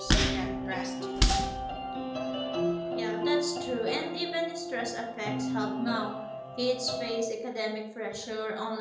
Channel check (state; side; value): identical; both; correlation 1.00